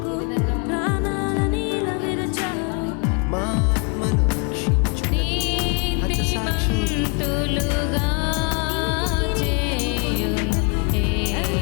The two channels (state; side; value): quieter; right; 34.4 dB